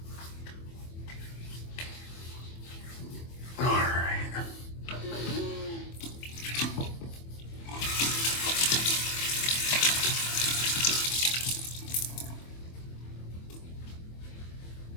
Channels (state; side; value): late; right; 24 ms